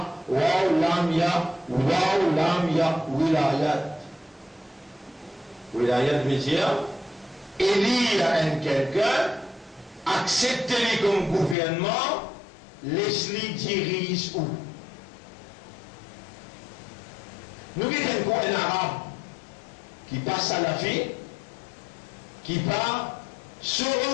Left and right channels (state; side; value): drops out; right; at 11.6 s